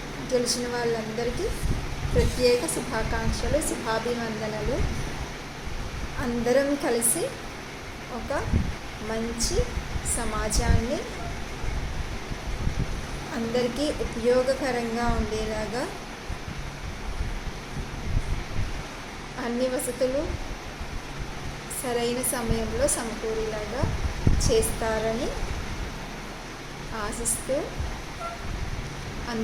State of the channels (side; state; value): both; identical; correlation 1.00